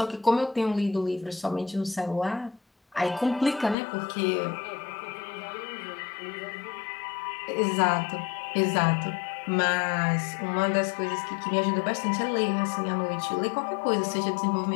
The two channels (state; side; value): drops out; right; at 3.8 s